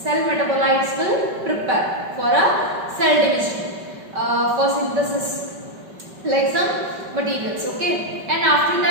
metabolites will prepare for a cell division, for synthesis like some materials. Okay, and after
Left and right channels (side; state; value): left; late; 5.2 ms